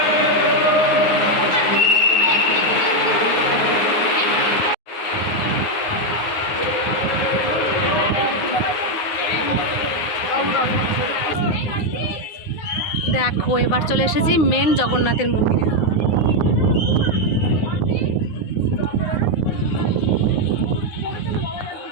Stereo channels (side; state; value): right; late; 9.6 ms